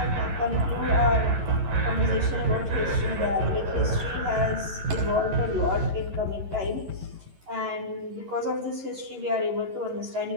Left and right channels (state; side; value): late; left; 11 ms